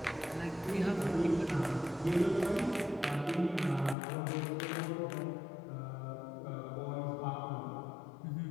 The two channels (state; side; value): drops out; right; at 4.0 s